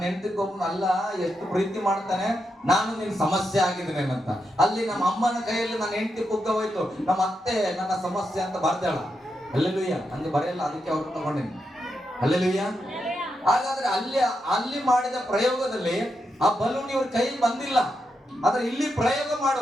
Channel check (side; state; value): both; normal; correlation 0.85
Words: ಹೆಂಡತಿಗೊಬ್ಬನ ಅಲ್ಲ ಎಷ್ಟು ಪ್ರೀತಿ ಮಾಡ್ತಾನೆ, ನಾನು ನಿನ್ ಸಮಸ್ಯೆ ಆಗಿದ್ದೇನೆ ಅಂತ. ಅಲ್ಲಿ ನಮ್ಮ ಅಮ್ಮನ ಕೈಯಲ್ಲಿ ನನ್ನ ಹೆಂಡತಿ ಪುಗ್ಗ ಹೋಯ್ತು, ನಮ್ಮ ಅತ್ತೆ ನನ್ನ ಸಮಸ್ಯೆ ಅಂತ ಬರ್ದಾಳ. ಹಲ್ಲೆಲೂಯಾ. ಹಂಗೆ ಬರೆಯಲ್ಲ, ಅದಕ್ಕೆ ಅವ್ರು ತಗೊಂಡಿನಿ. ಹಲ್ಲೆಲೂಯಾ. ಹಾಗಾದ್ರೆ ಅಲ್ಲಿ ಮಾಡಿದ ಪ್ರಯೋಗದಲ್ಲಿ ಆ ಬಲೂನ್ ಇವ್ರ ಕೈ ಬಂದಿಲ್ಲ. ಆದ್ರೆ ಇಲ್ಲಿ ಪ್ರಯೋಗ